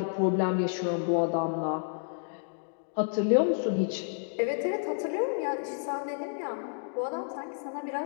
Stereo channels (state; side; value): silent; right; digital silence